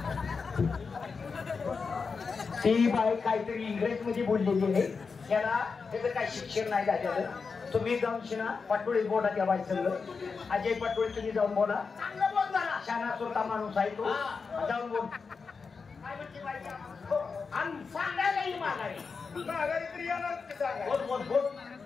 ती बाई काहीतरी इंग्रजीमध्ये बोललेली आहे. त्याला त्याचं काही शिक्षण नाही झालेलं. तुम्ही जाऊन शिना पाटोळी बोला त्या बाई संग. अजय पाटोळी तुम्ही जाऊन बोला. चांगलं बोल जरा. शाना स्वतः माणूस आहे तो. जाऊन बोल. आणि सांगायलाही मागाय तरी येणार. बोल बोल बोल.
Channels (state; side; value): quieter; right; 5.0 dB